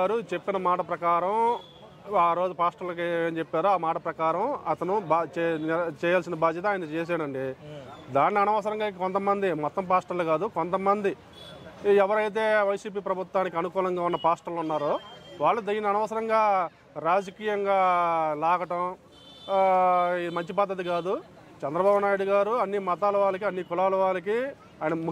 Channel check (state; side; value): identical; both; correlation 1.00